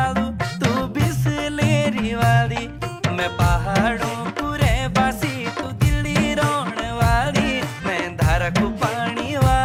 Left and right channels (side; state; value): both; identical; correlation 1.00